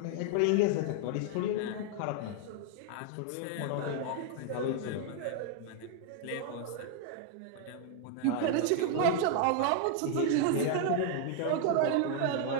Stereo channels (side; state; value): both; different; correlation 0.00